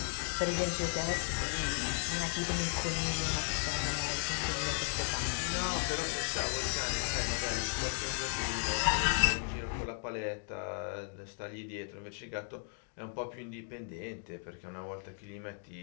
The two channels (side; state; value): right; silent; 54 dB below the other